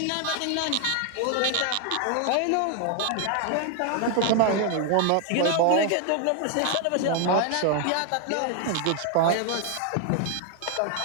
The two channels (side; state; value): both; different; correlation 0.00